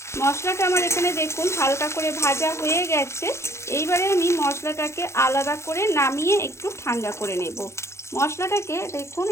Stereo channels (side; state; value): right; late; 0.13 ms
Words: মশলাটা আমার এখানে দেখুন হালকা করে ভাজা হয়ে গেছে। এইবারে আমি মশলাটাকে আলাদা করে নামিয়ে একটু ঠান্ডা করে নেব। মশলাটাকে দেখুন